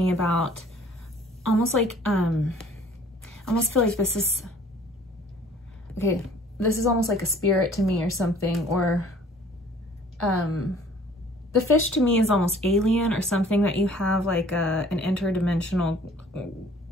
about almost like, I almost feel like this is, okay, this is almost like a spirit to me or something, or the fish to me is almost alien, or something that you have like an interdimensional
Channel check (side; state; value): both; normal; correlation 0.53